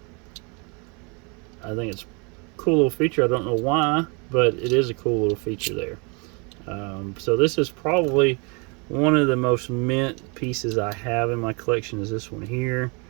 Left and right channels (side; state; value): left; quieter; 31.9 dB